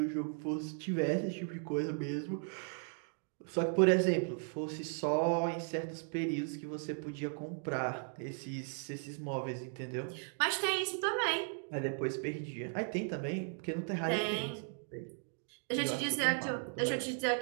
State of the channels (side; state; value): left; silent; 53 dB below the other